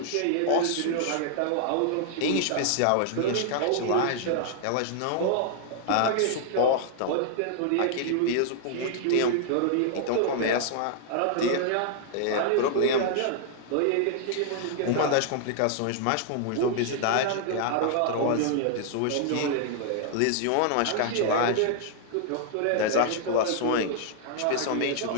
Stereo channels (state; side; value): different; both; correlation -0.01